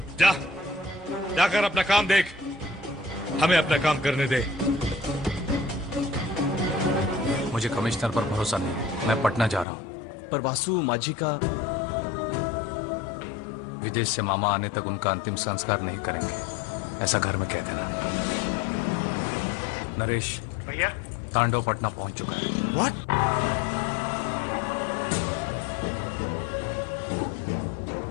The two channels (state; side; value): drops out; right; at 9.7 s